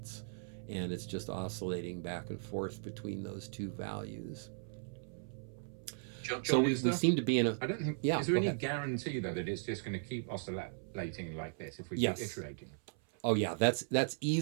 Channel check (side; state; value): left; silent; 53 dB below the other